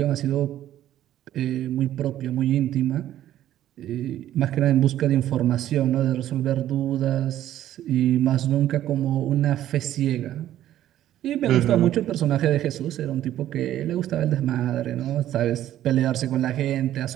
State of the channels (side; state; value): left; quieter; 12.5 dB